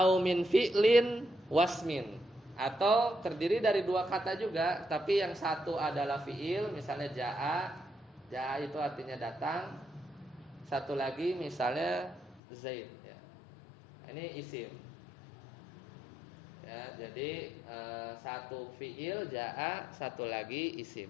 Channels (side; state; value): right; drops out; at 12.4 s